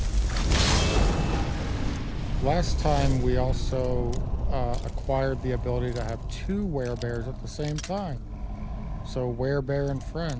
Last time we also acquired the ability to have two werebears at the same time. So werebear and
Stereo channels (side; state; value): both; identical; correlation 1.00